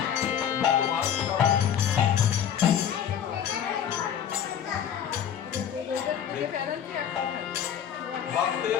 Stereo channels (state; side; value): quieter; right; 9.1 dB